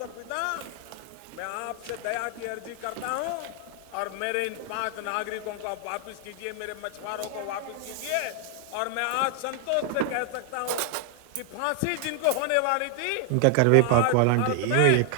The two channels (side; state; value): both; different; correlation 0.00